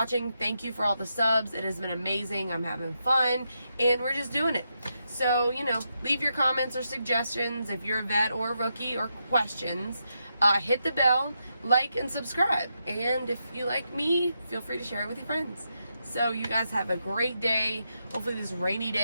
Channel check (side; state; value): both; inverted; correlation -0.84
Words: Thank you for all the subs. It has been amazing. I'm having fun, and we're just doing it. So, you know, leave your comments or suggestions if you're a vet or a rookie, or questions. Hit the bell, like, and subscribe. And if you like me, feel free to share it with your friends. So you guys have a great day. Hopefully this rainy